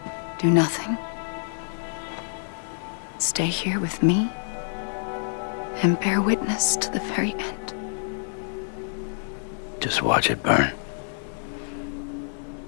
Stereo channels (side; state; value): right; silent; 57 dB below the other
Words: Do nothing. Stay here with me and bear witness to the very end. Just watch it burn.